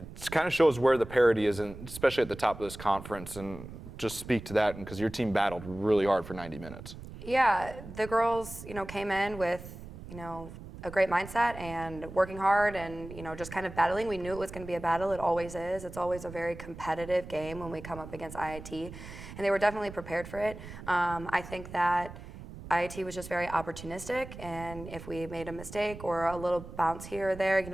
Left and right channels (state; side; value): noise; right; rumble, 13 dB below the sound